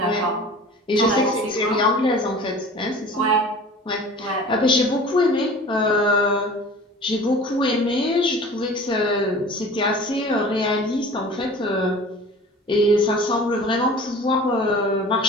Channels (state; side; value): normal; both; correlation 0.42